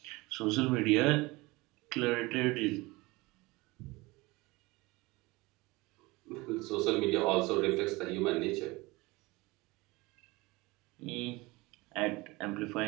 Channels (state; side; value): quieter; left; 22.6 dB